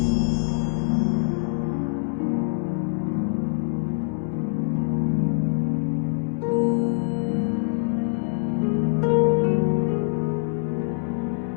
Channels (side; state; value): right; silent; 62 dB below the other